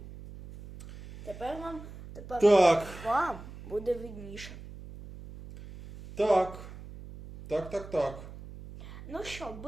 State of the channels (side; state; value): right; noise; hum, 14 dB below the sound